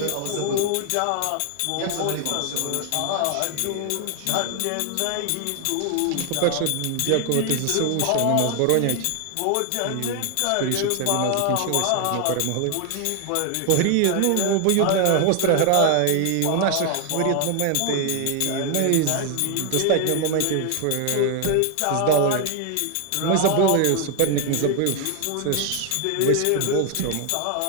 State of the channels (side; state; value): both; different; correlation 0.00